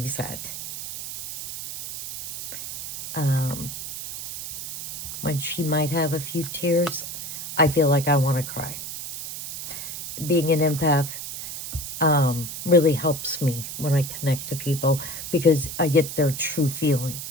sad. When she might have a few tears, I feel like I want to cry. Being an empath really helps me when I connect to people because I get their true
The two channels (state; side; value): noise; right; hiss, 7 dB below the sound